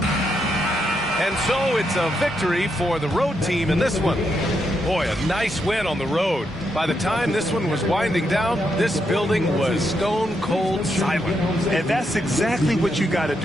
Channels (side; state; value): both; normal; correlation 0.80